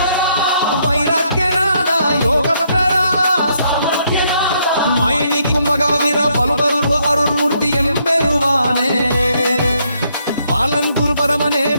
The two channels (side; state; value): both; inverted; correlation -0.73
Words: வைராக்கியநாதா யோகபக்தரா மயனிக்கும் மகாவீர பலுபருவ அருள்மூர்த்தி எம்பெருவானே பாலன் குரு பரமனே